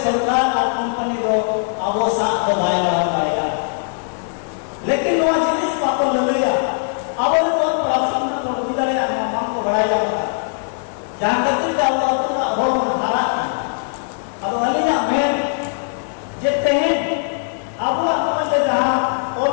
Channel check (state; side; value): silent; right; digital silence